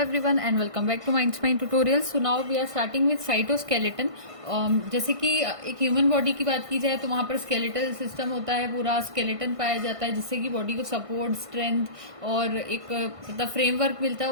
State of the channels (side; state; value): left; late; 1.5 ms